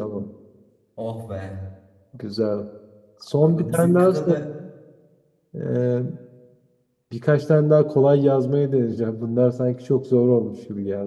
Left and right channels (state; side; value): identical; both; correlation 1.00